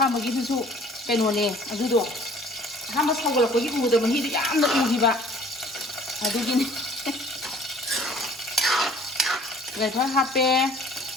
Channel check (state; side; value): normal; both; correlation 0.53